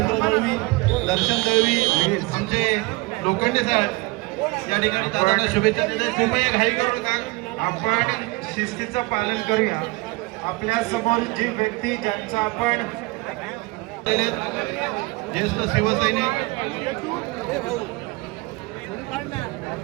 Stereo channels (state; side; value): quieter; left; 23.9 dB